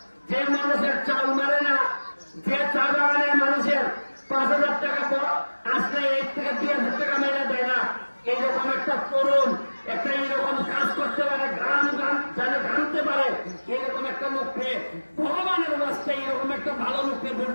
যে মানুষের চাল মারে না, যে চা বাগানের মানুষের 5,000 টাকা আসলে 1 থেকে 2,000 টাকা মেরে দেয় না, এইরকম একটা তরুণ একটা এইরকম কাজ করতে পারে, গান জানে গানতে পারে, এরকম একটা লোককে ভগবানের রাস্তায় এরকম একটা ভালো লোককে ভোট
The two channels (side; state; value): both; inverted; correlation -1.00